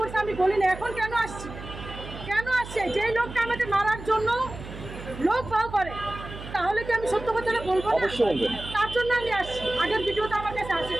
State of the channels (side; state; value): right; noise; hum, 12 dB below the sound